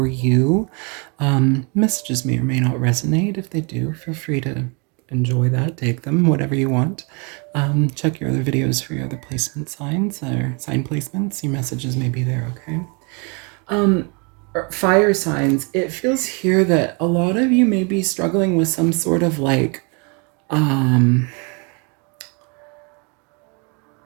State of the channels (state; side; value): quieter; left; 33.3 dB